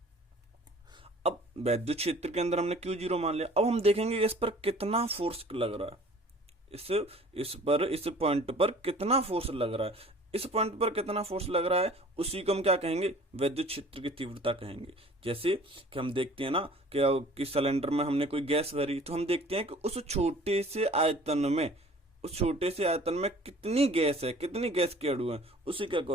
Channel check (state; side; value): normal; both; correlation 0.49